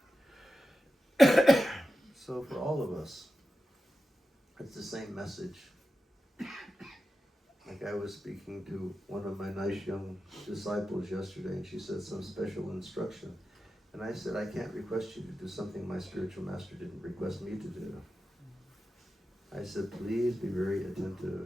So for all of us, it's the same message. Like I was speaking to one of my nice young disciples yesterday, and she said some special instruction. And I said, I can't request you to do something my spiritual master didn't request me to do. I said, please be very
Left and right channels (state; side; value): normal; both; correlation 0.92